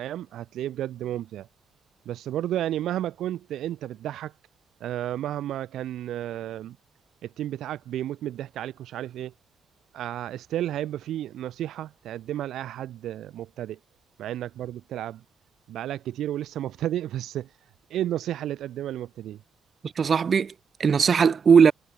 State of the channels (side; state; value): left; quieter; 7.4 dB